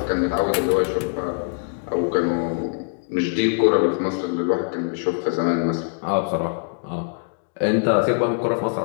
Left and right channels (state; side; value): silent; right; digital silence